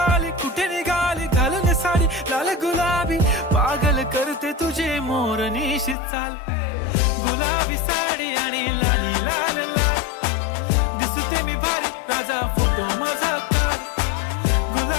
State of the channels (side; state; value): right; drops out; at 6.0 s